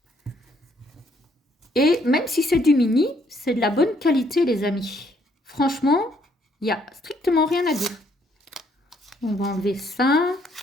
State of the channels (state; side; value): normal; both; correlation 0.68